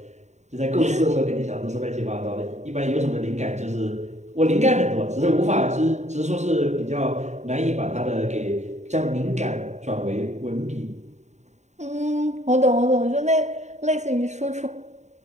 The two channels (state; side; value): late; left; 0.34 ms